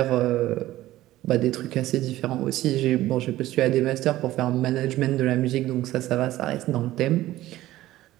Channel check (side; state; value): left; quieter; 15.4 dB